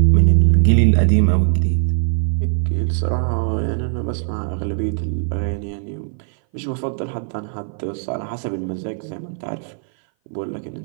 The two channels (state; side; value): silent; left; 59 dB below the other